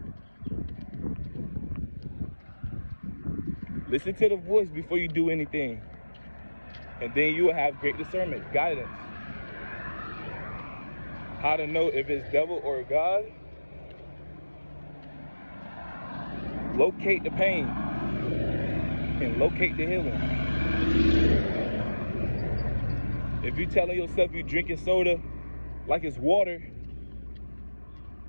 Listen to the voice before you do anything. And then you will have great discernment, guidance. How to know if it's devil or God? Locate the pain and locate the healing. If you're telling yourself you're drinking soda like it's water, and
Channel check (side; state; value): both; inverted; correlation -1.00